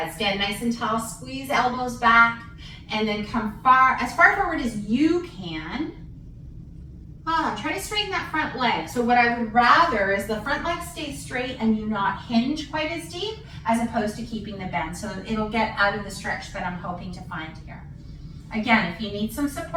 Stand nice and tall. Squeeze elbows back, and then come as far forward as you can. Try to straighten that front leg. So what I would rather is the front leg stay straight and you not hinge quite as deep, as opposed to keeping the bend. So it'll get out of the stretch that I'm hoping to find here. Again, if you need some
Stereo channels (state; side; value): identical; both; correlation 1.00